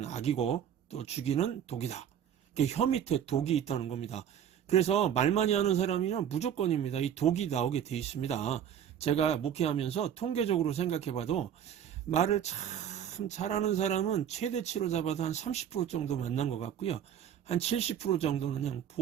악이고 또 죽이는 독이다. 혀 밑에 독이 있다는 겁니다. 그래서 말 많이 하는 사람이면 무조건입니다. 이 독이 나오게 돼 있습니다. 제가 목회하면서 통계적으로 생각해봐도 말을 참 잘하는 사람은 최대치로 잡아도 한 30% 정도 만난 것 같고요. 한 70% 정도는 그냥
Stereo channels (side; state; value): left; quieter; 9.3 dB